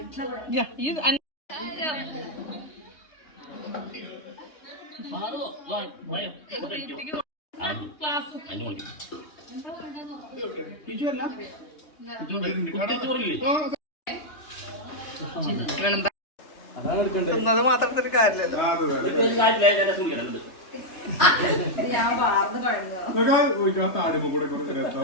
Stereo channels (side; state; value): right; late; 3.3 ms